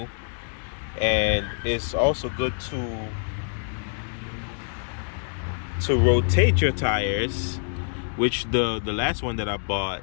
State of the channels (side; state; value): right; silent; 61 dB below the other